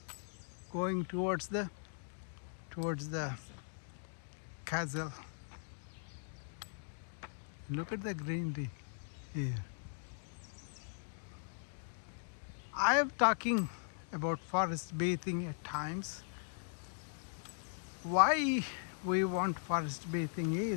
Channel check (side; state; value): right; silent; digital silence